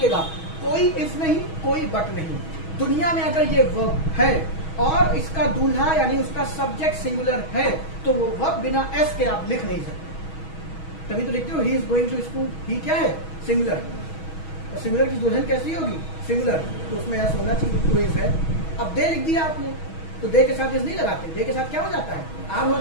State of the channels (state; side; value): late; right; 6.3 ms